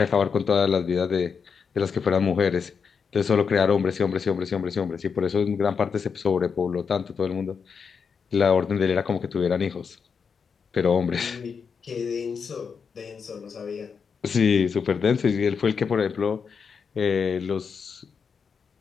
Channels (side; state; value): right; quieter; 6.0 dB